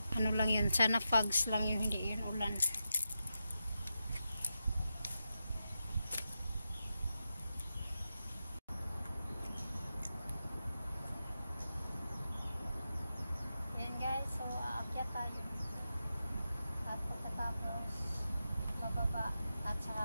Lang yun. Sana fogs lang yun, hindi yun ulan. Yan guys, so aakyat tayo. At pagkatapos bababa at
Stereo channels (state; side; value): inverted; both; correlation -0.89